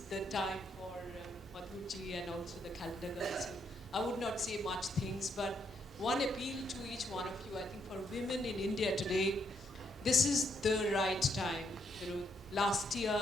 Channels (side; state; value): both; normal; correlation 0.75